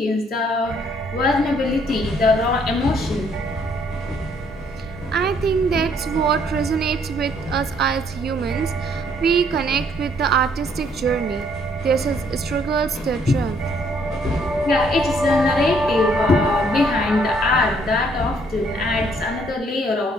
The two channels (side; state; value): both; normal; correlation 0.66